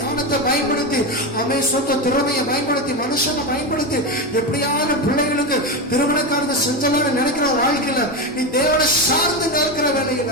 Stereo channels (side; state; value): both; normal; correlation 0.15